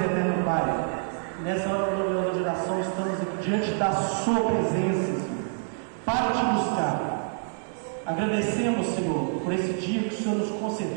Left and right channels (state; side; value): silent; left; digital silence